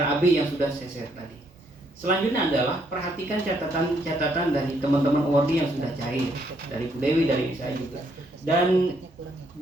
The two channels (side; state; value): both; normal; correlation 0.72